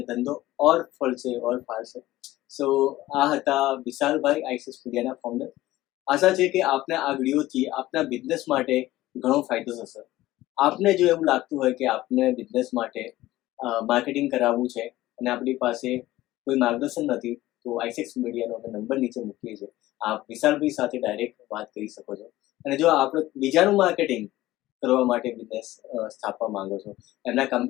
ધંધો ઓર ફળશે, ઓર ફાળશે. સો આ હતા વિશાલભાઈ, આઈસિસ મીડિયાના ફાઉન્ડર. આશા છે કે આપને આ વિડીયોથી આપના બિઝનેસ માટે ઘણો ફાયદો થશે. આપને જો એવું લાગતું હોય કે આપને બિઝનેસ માટે માર્કેટિંગ કરાવવું છે અને આપણી પાસે કોઈ માર્ગદર્શન નથી, તો આઈસેક્સ મીડિયાનો અમે નંબર નીચે મૂકીએ છીએ. આપ વિશાલભાઈ સાથે ડાયરેક્ટ વાત કરી શકો છો. અને જો આપણે બીજાનું માર્કેટિંગ કરવા માટે બિઝનેસ સ્થાપવા માંગો છો, એમના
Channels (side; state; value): right; quieter; 16.4 dB